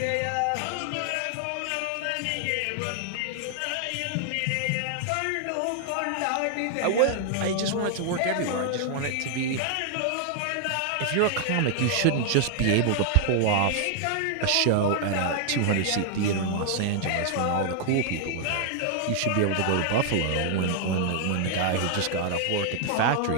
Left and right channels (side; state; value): both; different; correlation 0.00